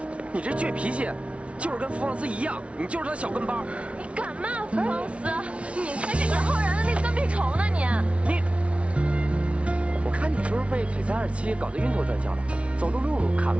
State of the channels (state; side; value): late; left; 0.062 ms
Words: 你这倔脾气，就是跟福旺斯一样，你就是他小跟班。你敢骂福旺斯？你才是杨浩然的那个跟屁虫呢！你，我看你是不是被璀璨27搞得晕头转向了？走路路看